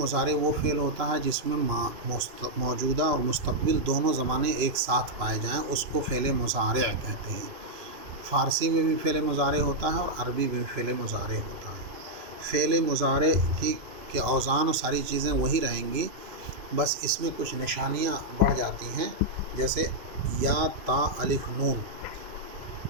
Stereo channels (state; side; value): late; left; 2.9 ms